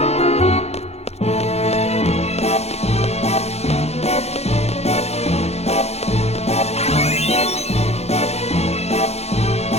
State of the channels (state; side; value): late; right; 0.31 ms